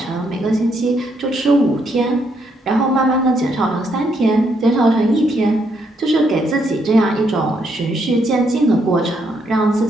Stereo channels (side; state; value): both; normal; correlation 0.75